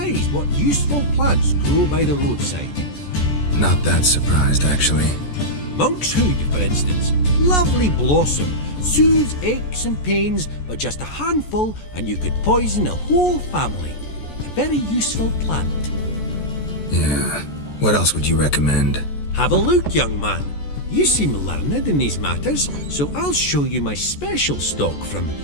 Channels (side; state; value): right; late; 14 ms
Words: what useful plants grow by the roadside. Not that surprised, actually. Monk's hood, for instance. Lovely blossom. Soothes aches and pains, but just a handful and you could poison a whole family. A very useful plant. Yeah. What else would you recommend? Have a look, young man. You seem learned in these matters, so I'll show you my special stock from